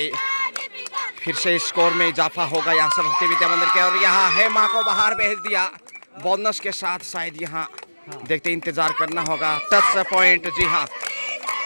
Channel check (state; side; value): inverted; both; correlation -1.00